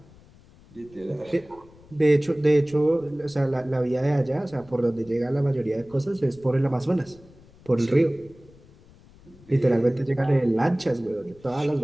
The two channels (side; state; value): left; noise; rumble, 25 dB below the sound